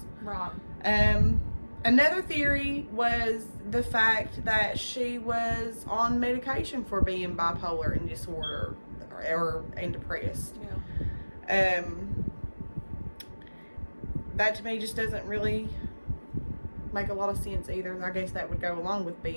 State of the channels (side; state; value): both; inverted; correlation -1.00